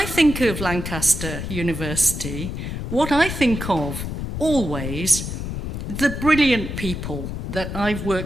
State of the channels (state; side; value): noise; left; rumble, 5 dB below the sound